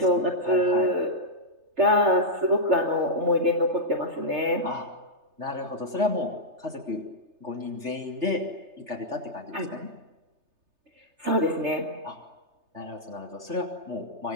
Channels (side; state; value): left; late; 3.3 ms